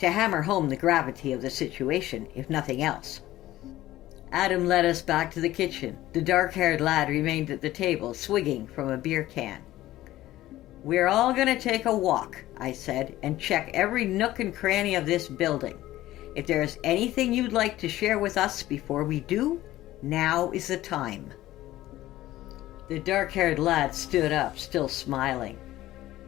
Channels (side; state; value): right; quieter; 15.4 dB